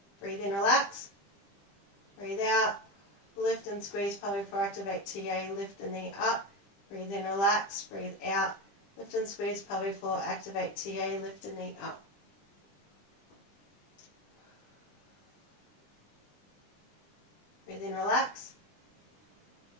Breathe in, relax. Breathe out. Lift and squeeze pelvic floor, activate TA, lift the knee up. Breathe in, relax. Breathe out. Lift and squeeze pelvic floor, activate TA, lift the knee up. Breathe in, relax.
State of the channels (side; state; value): right; late; 20 ms